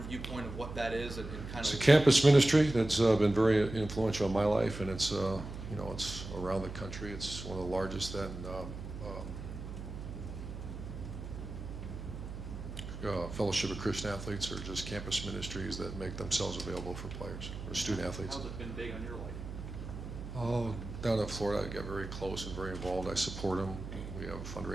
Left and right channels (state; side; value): noise; right; hum, 9 dB below the sound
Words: viewpoint of what that is and kind It's of? a campus ministry that's been very influential in my life, and it's it's around the country. It's one of the largest Fellowship of Christian Athletes, or just campus ministries that make themselves available for players or student athletes. How's it been big on your life? Oh, down in Florida, I get very close and very involved. I support them. We have